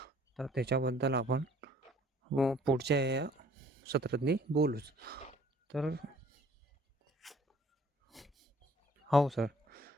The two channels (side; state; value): both; normal; correlation 0.56